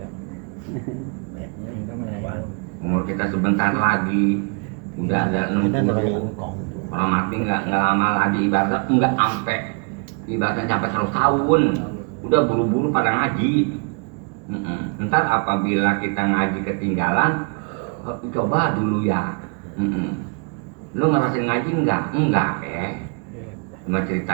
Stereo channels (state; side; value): quieter; left; 37.2 dB